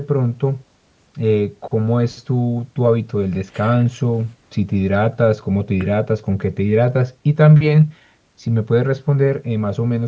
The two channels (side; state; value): both; identical; correlation 1.00